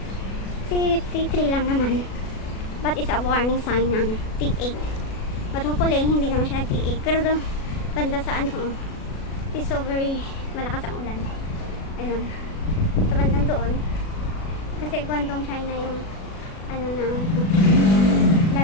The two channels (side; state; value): right; late; 37 ms